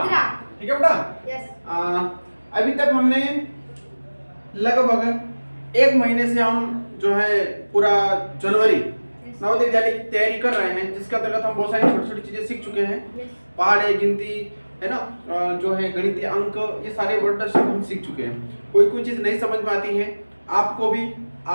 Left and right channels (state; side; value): inverted; both; correlation -1.00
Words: ठीक है बेटा? अभी तक हमने लगभग एक महीने से हम जो है पूरा जनवरी नवोदय विद्यालय की तैयारी कर रहे हैं, जिसके अंतर्गत हम बहुत सारी छोटी छोटी चीजें सीख चुके हैं। पहाड़े, गिनती है ना, जो है गणितीय अंक, ये सारे वर्ड हम सीख चुके हैं। कोई चीज नहीं समझ में आती है आपको